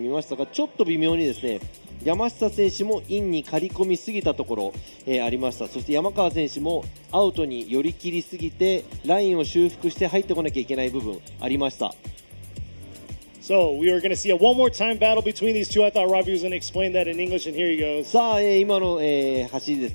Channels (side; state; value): both; inverted; correlation -1.00